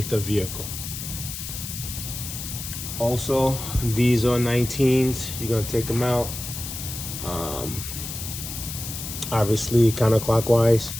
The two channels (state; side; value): noise; left; hiss, 8 dB below the sound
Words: the vehicle. Also, these are 19s. You're gonna take them out, obviously counterclockwise